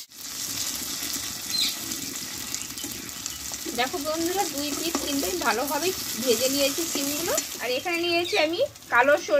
দেখো বন্ধুরা 2 পিঠ কিন্তু ভালোভাবে ভেজে নিয়েছি সিমগুলো। আর এখানে নিয়েছি আমি কালো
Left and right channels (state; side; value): identical; both; correlation 1.00